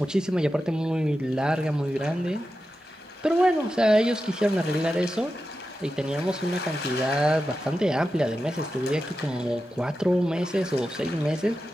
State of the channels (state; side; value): normal; both; correlation 0.91